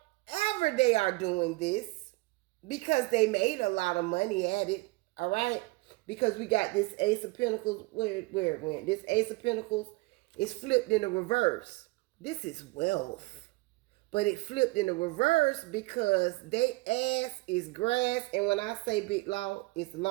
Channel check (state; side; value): quieter; left; 23.5 dB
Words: they are doing this, because they made a lot of money at it, all right? Because we got this Ace of Pentacles, where it went. This Ace of Pentacles is flipped in the reverse. This is wealth. But it flipped in the reverse because they ass is grass. And when I say Big Law, it's